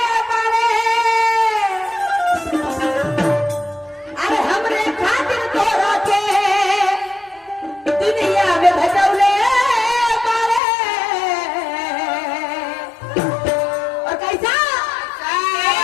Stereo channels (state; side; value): drops out; right; at 10.6 s